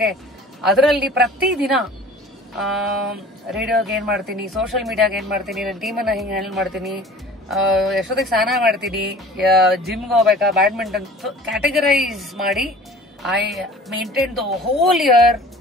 ಅದರಲ್ಲಿ ಪ್ರತಿದಿನ ರೇಡಿಯೋಗೆ ಏನ್ ಮಾಡ್ತೀನಿ, ಸೋಷಿಯಲ್ ಮೀಡಿಯಾಗೆ ಏನ್ ಮಾಡ್ತೀನಿ, ನನ್ನ ಟೀಮನ್ನ ಹಿಂಗೆ ಹ್ಯಾಂಡಲ್ ಮಾಡ್ತೀನಿ, ಎಷ್ಟೊತ್ತಿಗೆ ಸ್ನಾನ ಮಾಡ್ತೀನಿ, ಜಿಮ್ಗೆ ಹೋಗ್ಬೇಕಾ, ಬ್ಯಾಡ್ಮಿಂಟನ್, ಕ್ಯಾಟಗರೈಸ್ ಮಾಡಿ I maintain the whole year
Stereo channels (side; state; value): both; normal; correlation 0.45